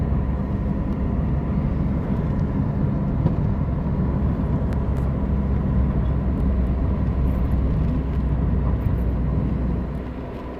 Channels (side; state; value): both; identical; correlation 1.00